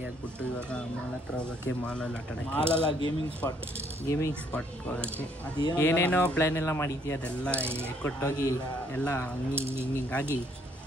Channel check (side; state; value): both; normal; correlation 0.66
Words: ಆಗ್ಬಿಟ್ಟು ಇವಾಗ ಮಾಲ್ ಹತ್ರ ಹೋಗೋಕ್ಕೆ. ಮಾಲಲ್ಲಿ ಆಟ ಆಡೋಕ್ಕೆ, ಮಾಲಲ್ಲ ಗೇಮಿಂಗ್ ಸ್ಪಾಟ್ ಹೋಗೋಕ್ಕೆ. ಏನೇನೋ ಪ್ಲ್ಯಾನ್ ಎಲ್ಲ ಮಾಡಿದ್ವಿ, ಅದೆಲ್ಲ ಕೊಟ್ಟೋಗಿ ಎಲ್ಲ ಹಿಂಗಾಗಿ